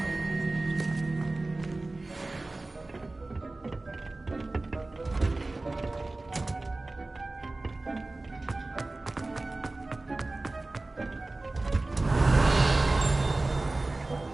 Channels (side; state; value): left; quieter; 3.0 dB